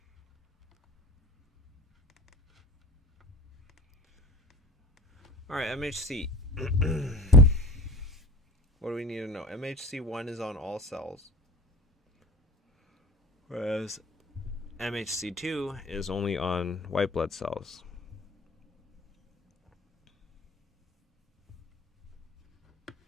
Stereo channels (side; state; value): both; normal; correlation 0.41